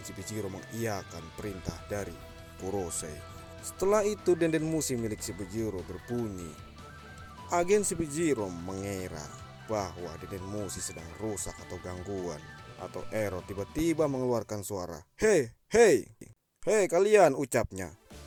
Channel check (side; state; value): both; identical; correlation 1.00